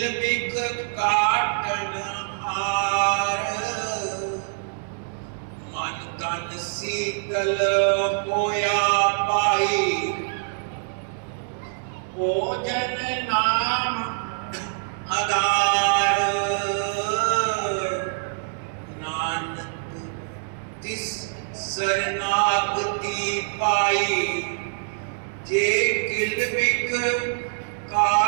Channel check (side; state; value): left; silent; 62 dB below the other